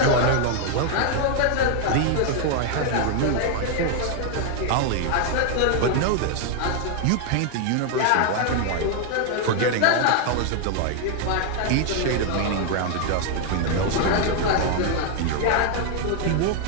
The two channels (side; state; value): both; different; correlation 0.00